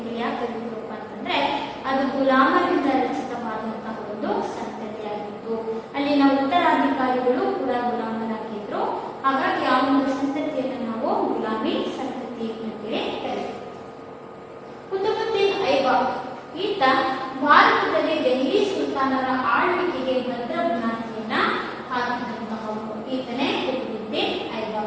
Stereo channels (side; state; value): both; identical; correlation 1.00